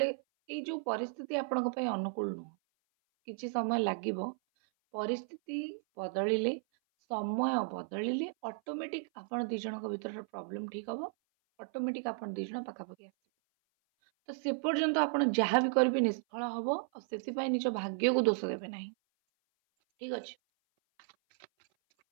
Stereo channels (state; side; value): silent; left; 55 dB below the other